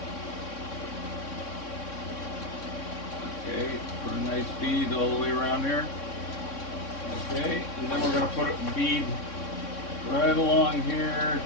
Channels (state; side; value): late; right; 3.6 ms